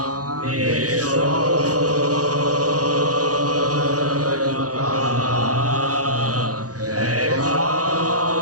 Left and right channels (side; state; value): left; late; 0.67 ms